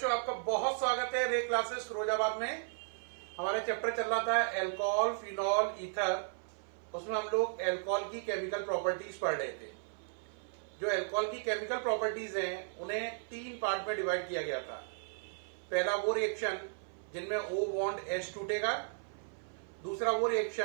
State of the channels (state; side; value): silent; left; 54 dB below the other